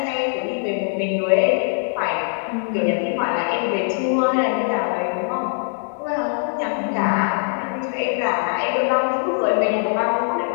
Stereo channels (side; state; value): right; silent; 60 dB below the other